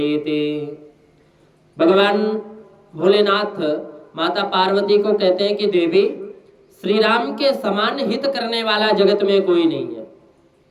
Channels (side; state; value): both; identical; correlation 1.00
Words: भगवान भोलेनाथ माता पार्वती को कहते हैं कि देवी, श्री राम के समान हित करने वाला जगत में कोई नहीं है।